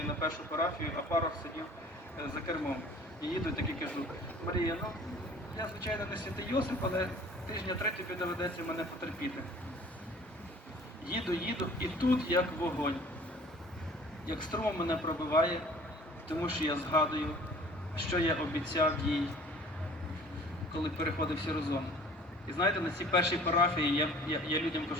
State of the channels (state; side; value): normal; both; correlation 0.49